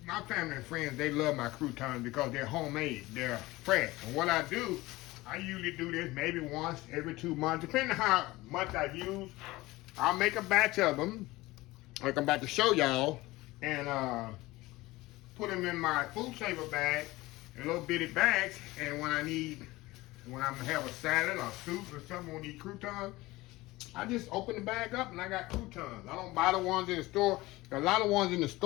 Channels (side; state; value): right; quieter; 19.6 dB